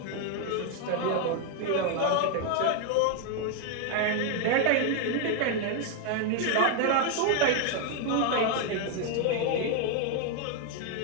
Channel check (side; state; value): both; different; correlation 0.01